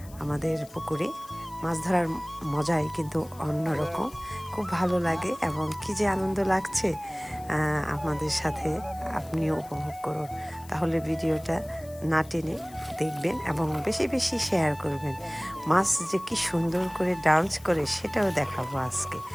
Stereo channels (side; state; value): left; noise; hiss, 22 dB below the sound